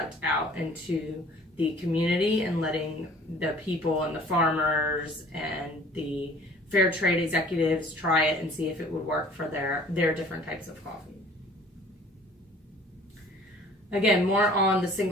out into the community and letting the people and the farmers and the fair trade executives try it and see if it would work for their different types of coffee. Again, more on the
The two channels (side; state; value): both; normal; correlation 0.51